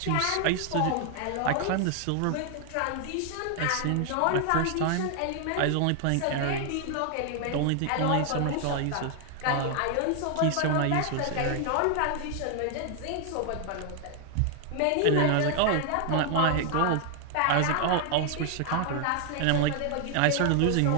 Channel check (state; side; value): different; both; correlation 0.00